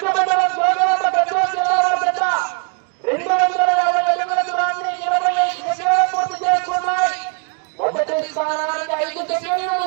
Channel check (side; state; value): left; quieter; 36.7 dB